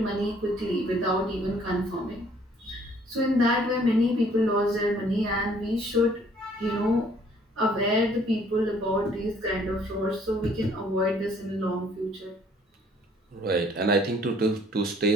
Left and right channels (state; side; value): normal; both; correlation 0.60